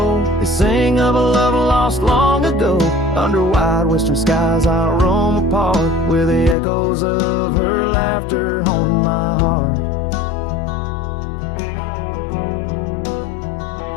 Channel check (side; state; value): right; drops out; at 6.6 s